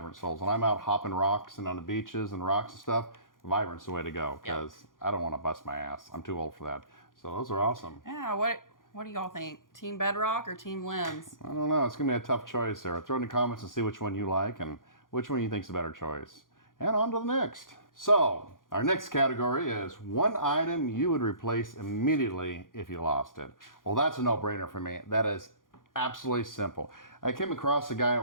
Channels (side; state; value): right; late; 0.90 ms